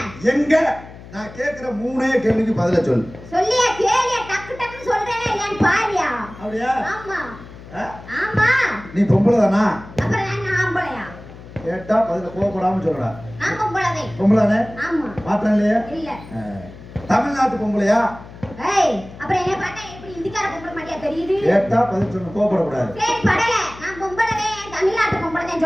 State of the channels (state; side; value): noise; left; hum, 17 dB below the sound